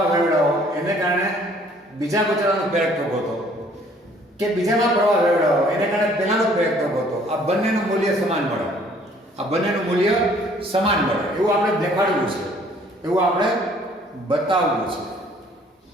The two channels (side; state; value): both; normal; correlation 0.59